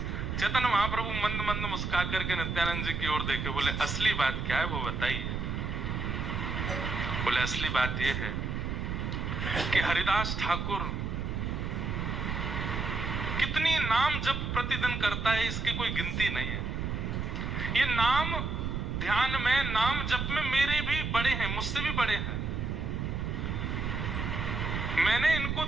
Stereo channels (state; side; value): noise; right; rumble, 2 dB below the sound